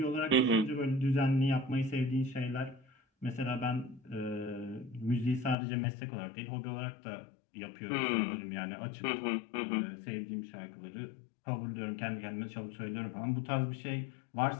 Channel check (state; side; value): drops out; right; at 5.6 s